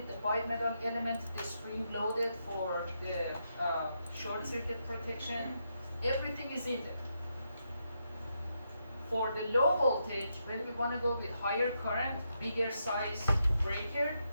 the bimetal element, the spring loaded for the short circuit protection, everything is in there. For the low voltage, when we want to go with higher current, bigger size breaker,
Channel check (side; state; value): both; inverted; correlation -0.82